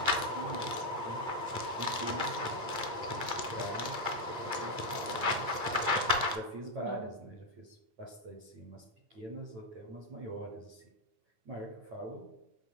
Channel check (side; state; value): left; late; 8.8 ms